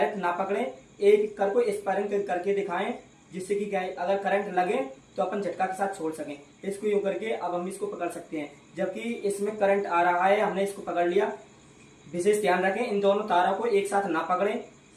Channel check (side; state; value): both; identical; correlation 1.00